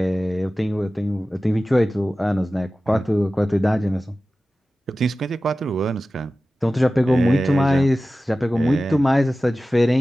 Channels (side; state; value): both; normal; correlation 0.95